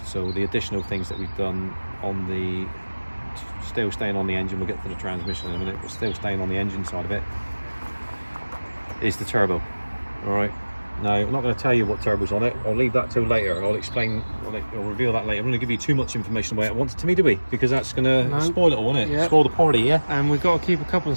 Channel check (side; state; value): both; inverted; correlation -1.00